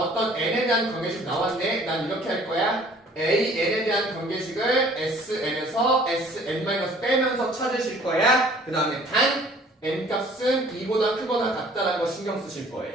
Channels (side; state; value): both; normal; correlation 0.53